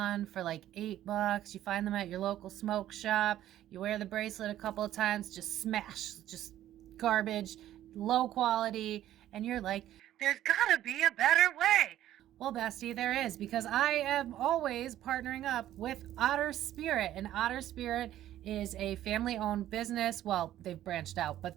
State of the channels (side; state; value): left; quieter; 12.8 dB